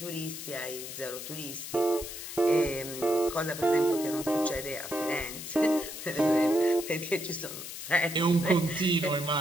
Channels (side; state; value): left; noise; hiss, 9 dB below the sound